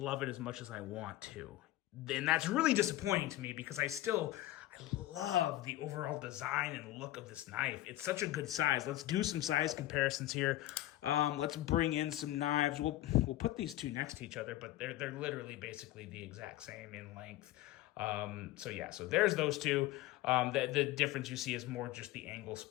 it as much as I want to. And that's really disappointing to me, because I love the overall design and look of this knife. It's such a good size. Let's do some size comparisons here. Let's bring in some knives. We'll put these two next to each other, but they're literally basically the exact same in length. So there's those two. The difference you see is more just the angles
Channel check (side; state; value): right; quieter; 15.6 dB